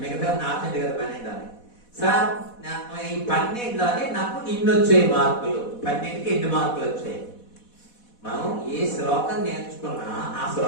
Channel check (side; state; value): right; late; 4.1 ms